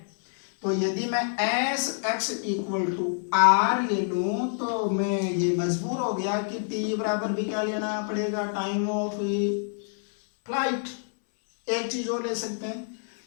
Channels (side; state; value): right; silent; 60 dB below the other